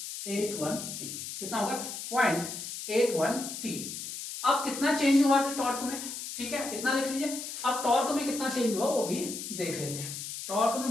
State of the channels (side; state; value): left; noise; hiss, 7 dB below the sound